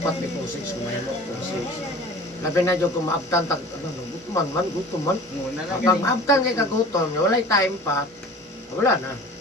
may kung 6, kumahimo kung 6. Labi na dyan kung maabtan, gutom man. Muna na Pag maabtan kay kagutom, wala time pa, wala na.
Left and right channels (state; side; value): normal; both; correlation 0.42